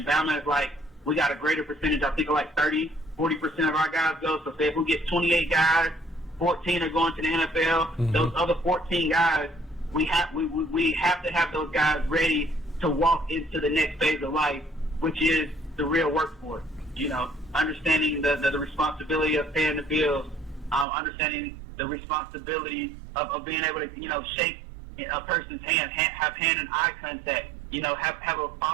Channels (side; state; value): left; drops out; at 20.9 s